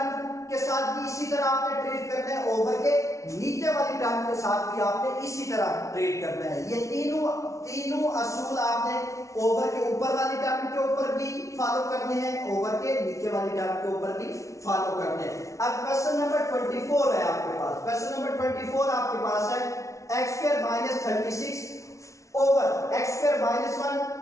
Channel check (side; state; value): right; late; 0.15 ms